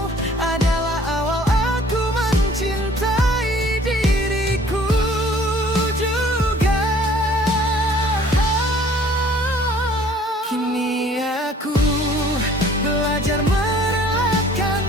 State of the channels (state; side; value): normal; both; correlation 0.54